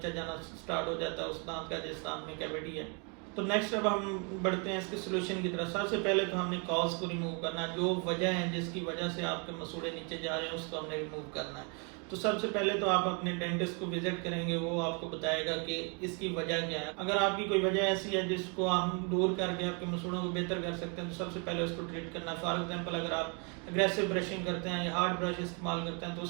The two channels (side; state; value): left; quieter; 35.6 dB